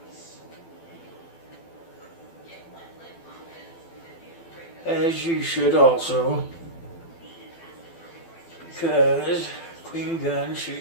As you should also, because clean gun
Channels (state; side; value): late; right; 12 ms